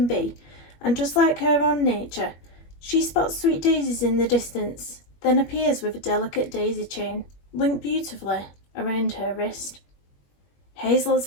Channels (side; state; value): right; late; 21 ms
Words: be, and just like her own nature, she spots sweet daisies in the distance, then appears with a delicate daisy chain, linked beautifully around her wrist. Hazel, as